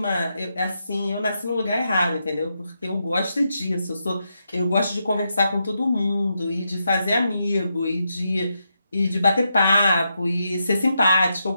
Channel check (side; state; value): both; inverted; correlation -0.84